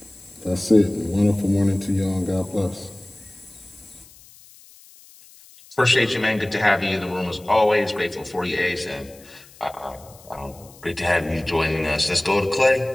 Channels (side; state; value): left; noise; hiss, 24 dB below the sound